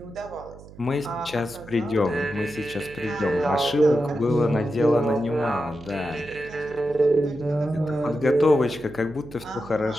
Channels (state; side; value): noise; right; hum, 19 dB below the sound